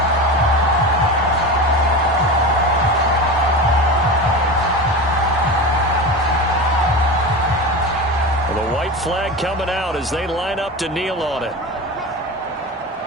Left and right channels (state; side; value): normal; both; correlation 0.26